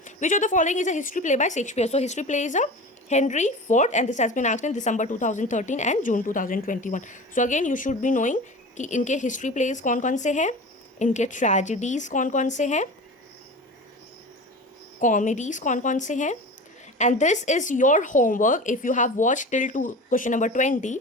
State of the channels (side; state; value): both; normal; correlation 0.33